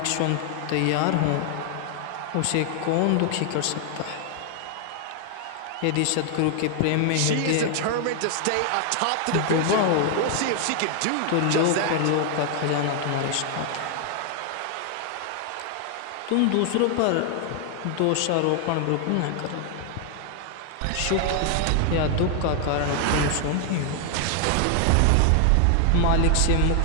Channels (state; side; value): different; both; correlation 0.00